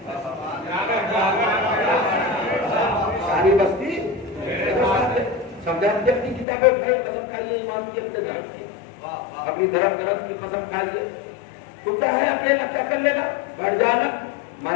ساری بستی سمجھا. اپنی کتابیں اٹھائے، قسم کھائیے ایمان کی، اپنے دھرم کی، اپنی دھرم گرد کی قسم کھائیے. تو کیا ہے اکیلا کیا کر لے گا؟ بیٹھ جانا.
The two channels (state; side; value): drops out; right; at 6.5 s